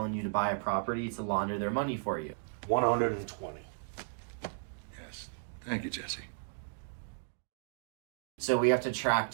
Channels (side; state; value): left; silent; digital silence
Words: you to buy a property to launder their money for you. 120. Yes. Thank you, Jesse. So we have to track